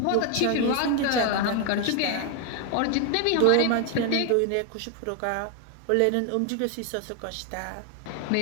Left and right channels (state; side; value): different; both; correlation 0.01